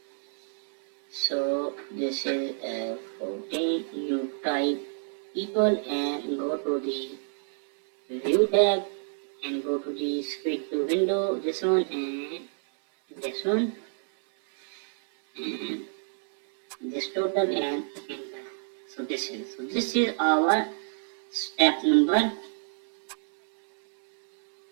So this is 14. You type equal and go to the view tab and go to the split to window. This one and this one and this total and enter. So this is our step number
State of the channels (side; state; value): left; silent; 59 dB below the other